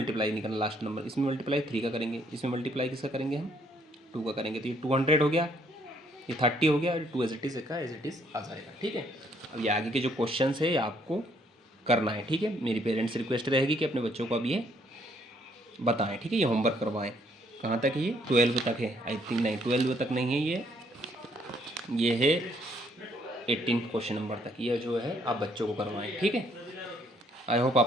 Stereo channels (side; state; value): both; normal; correlation 0.67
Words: नहीं करना, लास्ट नंबर इसमें मल्टीप्लाई 3 का करेंगे, इसमें मल्टीप्लाई किसका करेंगे हम 2 का करेंगे, तो ये 200 हो गया, ये 30 हो गया, और 2 एज इट इज़ का एज इट इज़ आ जाएगा, ठीक है। अब ये आगे के जो क्वेश्चन है ये आपको करना है, ठीक है। मेरी पेरेंट्स रिक्वेस्ट रहेगी कि अपने बच्चों को अब ये बताएं, ठीक है, ये होमवर्क करवाएं। कहाँ तक है ये 12 तक है, आई थिंक नहीं 12 तक नहीं है, ये है 18 क्वेश्चन नंबर तक, ये जो है आप बच्चों को करवाएं, ठीक है। आई होप